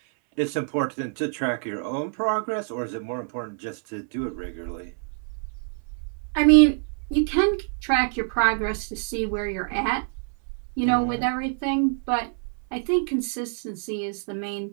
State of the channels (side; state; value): left; silent; 61 dB below the other